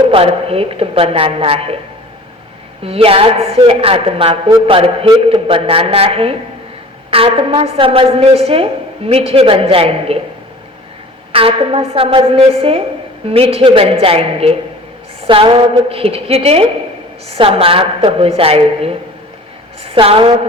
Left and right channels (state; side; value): normal; both; correlation 0.43